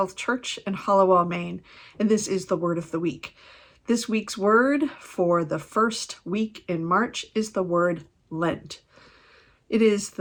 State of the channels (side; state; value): both; identical; correlation 1.00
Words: Church in Hallowell, Maine, and this is the Word of the Week. This week's word for the first week in March is the word Lent. It is